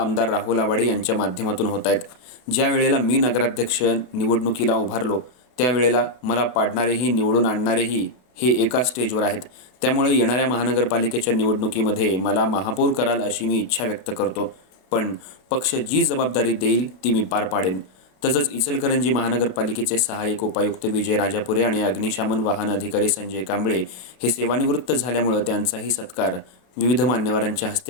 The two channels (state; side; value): late; right; 32 ms